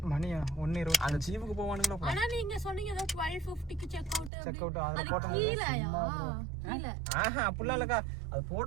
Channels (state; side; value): drops out; left; at 4.3 s